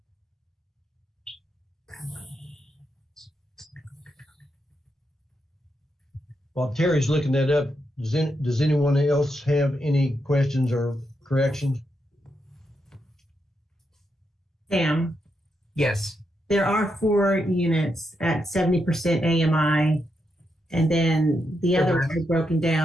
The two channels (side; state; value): both; normal; correlation 0.83